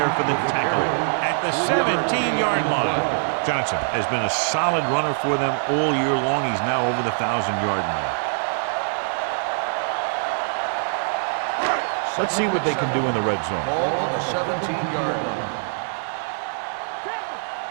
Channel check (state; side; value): silent; left; digital silence